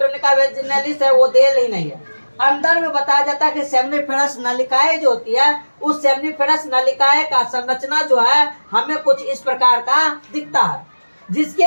वेजिनालिस है वो देल ही नहीं है। अंदर में बताया जाता है कि सेमिनिफेरस नलिकाएं जो होती है उस सेमिनिफेरस नलिकाएं का संरचना जो है हमें कुछ इस प्रकार का दिखता है, जिसके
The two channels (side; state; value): both; inverted; correlation -1.00